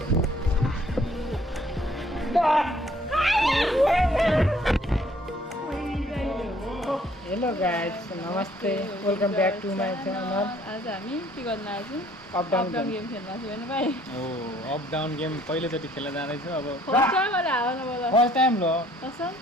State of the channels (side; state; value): both; normal; correlation 0.61